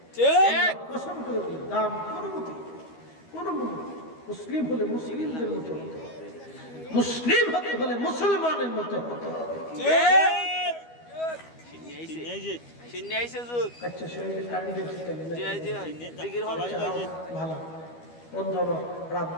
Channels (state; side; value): late; right; 12 ms